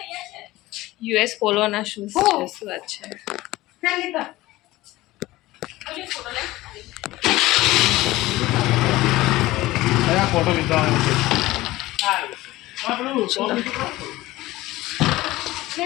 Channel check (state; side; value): quieter; right; 18.0 dB